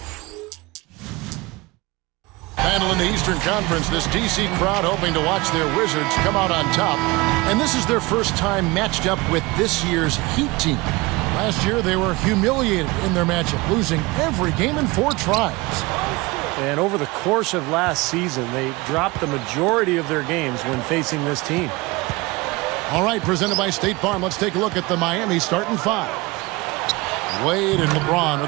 Battle in the Eastern Conference, this DC crowd hoping to watch their Wizards come out on top. And this is their first time matched up with this year's Heat team. Last year, they were humiliated in their matchup, losing every game in 4 tries. And over the course of last season, they dropped the majority of their games when facing this team. All right, presented by State Farm, let's take a look at the Miami starting 5. Wade and LeBron are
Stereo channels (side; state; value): left; quieter; 23.1 dB